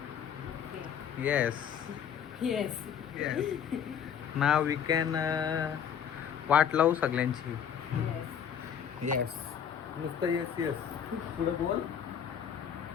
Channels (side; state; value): right; quieter; 8.3 dB